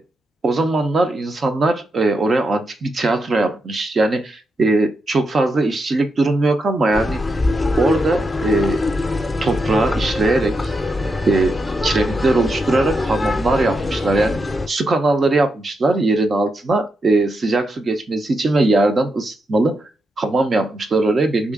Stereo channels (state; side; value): normal; both; correlation 0.84